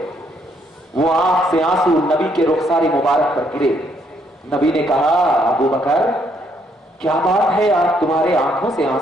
وہ آنکھ سے آنسو نبی کے رخسار مبارک پر گرے. نبی نے کہا ابوبکر کیا بات ہے آج تمہارے آنکھوں سے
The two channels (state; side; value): normal; both; correlation 0.71